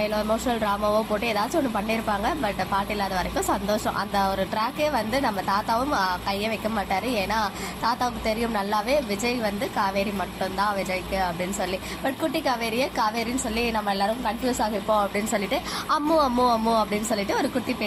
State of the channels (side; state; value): both; identical; correlation 1.00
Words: எமோஷனல் ட்ராமாவோ போட்டு ஏதாச்சும் ஒன்று பண்ணியிருப்பாங்க. பட் பாட்டி இல்லாத வரைக்கும் சந்தோஷம். அந்த ஒரு ட்ராக்கே வந்து நம்ம தாத்தாவும் கையை வைக்க மாட்டாரு. ஏன்னா தாத்தாவுக்கு தெரியும் நல்லாவே விஜய் வந்து காவேரி மட்டும்தான் விஜய்க்கு அப்படின்னு சொல்லி. பட் குட்டி காவேரியை காவேரின்னு சொல்லி நம்ம எல்லாரும் கன்ஃபியூஸ் ஆகிருப்போம் அப்படின்னு சொல்லிட்டு அம்மு அம்மு அம்மு அப்படின்னு சொல்லிட்டு ஒரு குட்டி